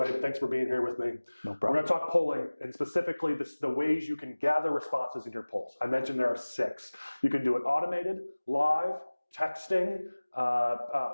Abe, thanks for being here with me. No problem. We're going to talk polling and specifically the ways you can gather responses in your polls. I mentioned there are 6. You can do it automated, live, texting,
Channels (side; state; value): both; inverted; correlation -1.00